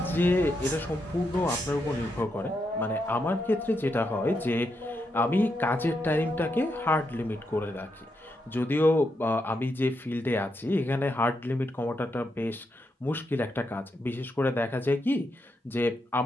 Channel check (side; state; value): both; normal; correlation 0.82